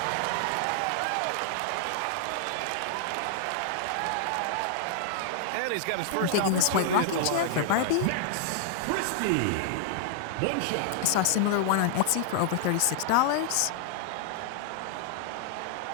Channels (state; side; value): different; both; correlation -0.01